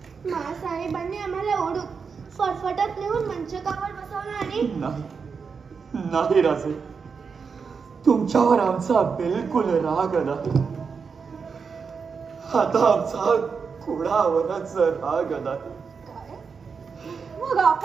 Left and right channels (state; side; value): quieter; left; 5.6 dB